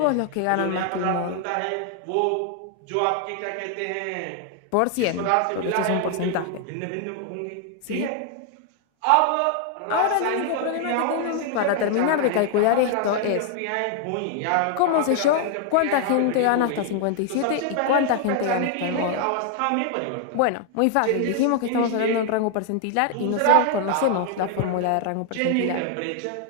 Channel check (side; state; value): both; different; correlation 0.00